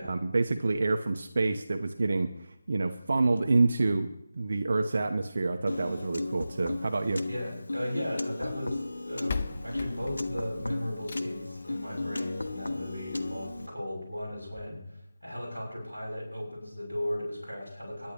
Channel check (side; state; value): both; inverted; correlation -0.95